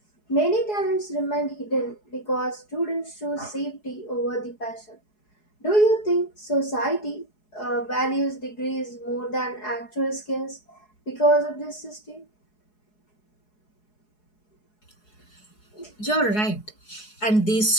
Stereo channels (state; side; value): late; right; 4.7 ms